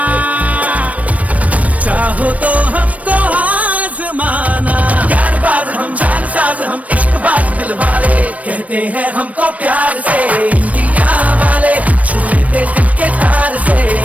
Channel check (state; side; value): late; left; 0.068 ms